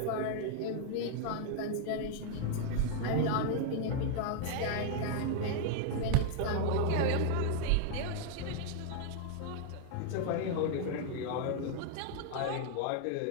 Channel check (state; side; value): different; both; correlation 0.00